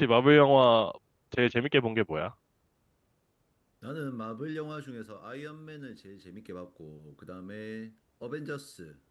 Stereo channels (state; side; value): identical; both; correlation 1.00